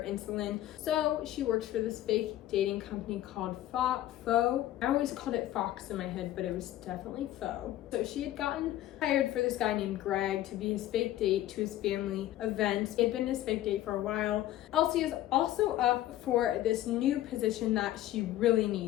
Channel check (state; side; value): quieter; right; 13.9 dB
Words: insulin. So she works for this fake dating company called Faux. I always called it Fox in my head, but it was definitely Faux. So she had gotten hired for this guy named Greg to be his fake date to his family event. It had been his fake date for a while. Elsie is also up for this new position that she really